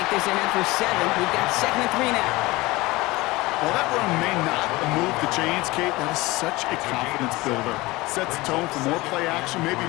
this ahead for 7. We've got 2nd and 3 now. Well, that run may not move the chains, Kate. That is such a confidence builder. Sets the tone for more play action, maybe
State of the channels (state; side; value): quieter; right; 21.0 dB